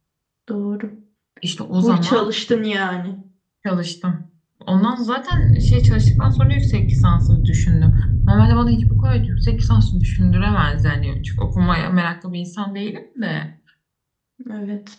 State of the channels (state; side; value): identical; both; correlation 1.00